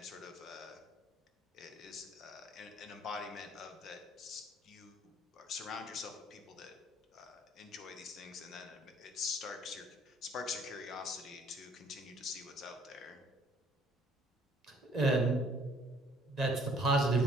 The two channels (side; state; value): both; normal; correlation 0.59